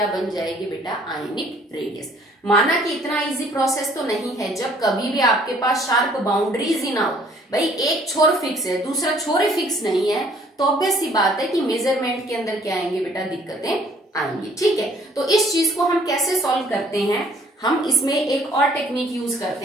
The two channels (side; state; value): both; normal; correlation 0.59